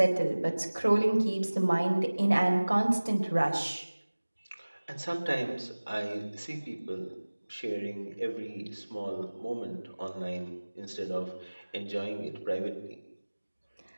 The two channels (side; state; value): both; inverted; correlation -1.00